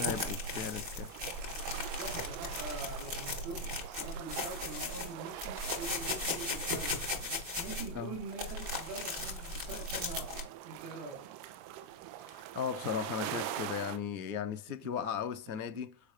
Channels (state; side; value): late; left; 23 ms